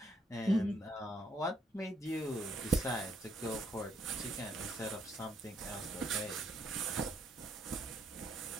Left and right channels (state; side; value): normal; both; correlation 0.71